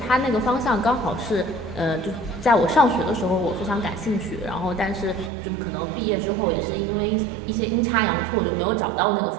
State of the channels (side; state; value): left; drops out; at 5.3 s